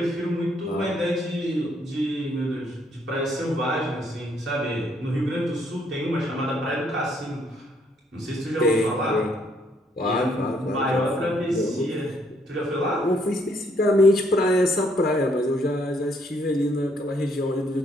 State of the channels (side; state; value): both; normal; correlation 0.69